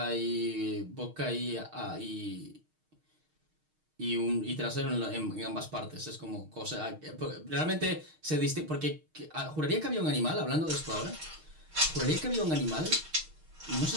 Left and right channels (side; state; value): left; late; 6.4 ms